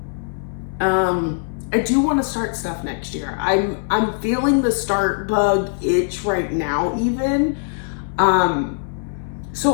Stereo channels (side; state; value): right; silent; 61 dB below the other